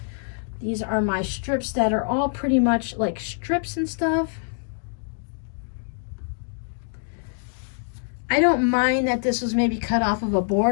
These are my strips that are all pretty much like strips and stuff. I don't mind that this was maybe cut off of a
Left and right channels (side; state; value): right; silent; 62 dB below the other